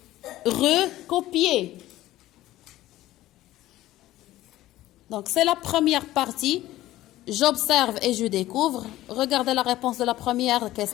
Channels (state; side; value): quieter; right; 15.5 dB